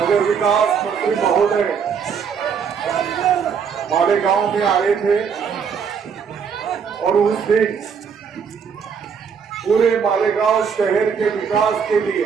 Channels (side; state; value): left; quieter; 6.6 dB